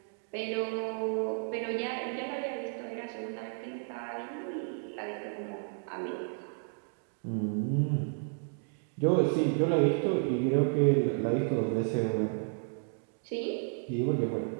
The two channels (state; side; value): silent; left; 56 dB below the other